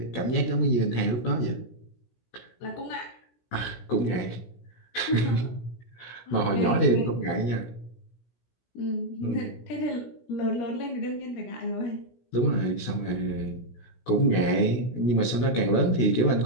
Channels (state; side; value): late; right; 17 ms